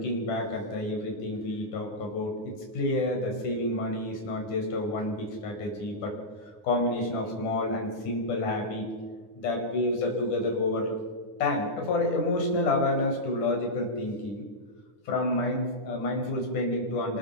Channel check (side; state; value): right; late; 9.7 ms